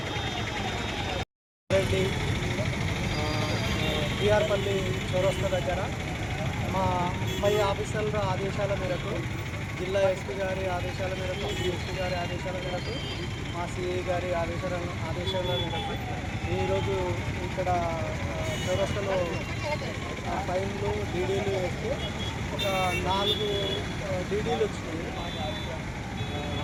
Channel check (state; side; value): identical; both; correlation 1.00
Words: రెడ్డి బీఆర్పల్లి చౌరస్తా దగ్గర మా పై ఆఫీసర్ల ఆదేశాల మేరకు జిల్లా ఎస్పీ గారి ఆదేశాల మేరకు డిఎస్పీ గారి ఆదేశాల మేరకు మా సిఐ గారి ఆదేశాల మేరకు ఈరోజు ఇక్కడ చౌరస్తాలో ఫైన్లు డీడీలు వేస్తే ఒక 4 డీడీలు వచ్చినాయి.